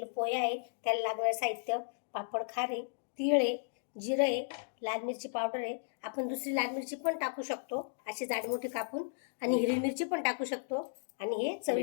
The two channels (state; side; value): silent; right; digital silence